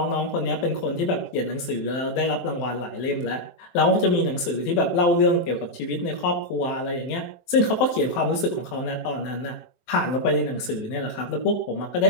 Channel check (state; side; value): late; right; 23 ms